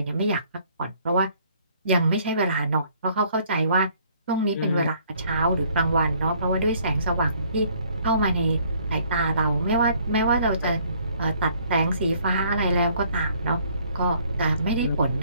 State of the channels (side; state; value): both; inverted; correlation -0.61